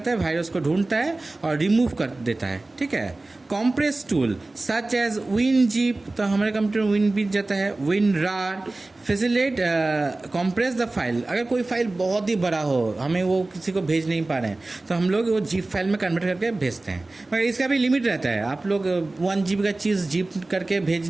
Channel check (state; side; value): quieter; left; 3.0 dB